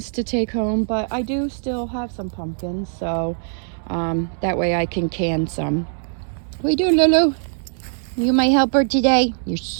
to take home, but I do still have some pumpkins, so that way I can can some. What are you doing, Lulu? You my helper today? You're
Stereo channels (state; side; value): silent; left; digital silence